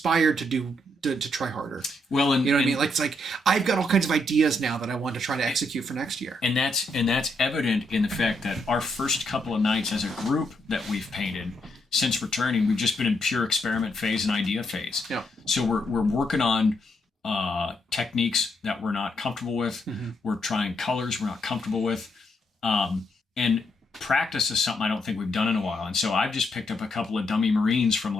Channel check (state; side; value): normal; both; correlation 0.77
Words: to try harder. Well, and you know what I mean? Like it's like I've got all kinds of ideas now that I want to try to execute for next year. And that's evident in the fact that our first couple of nights as a group that we've painted since returning, we've just been in pure experiment phase and idea phase. Yeah. So we're working on techniques that we're not comfortable with. Mm-hmm. We're trying colors we're not comfortable with. And practice is something I don't think we've done in a while. And so I've just picked up a couple of dummy Marines from